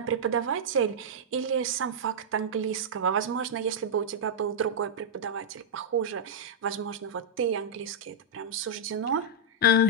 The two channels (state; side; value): normal; both; correlation -0.07